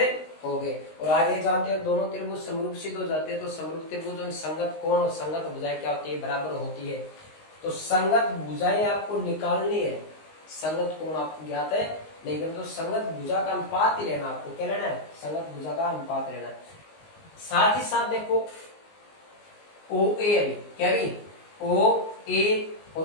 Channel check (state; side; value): late; right; 19 ms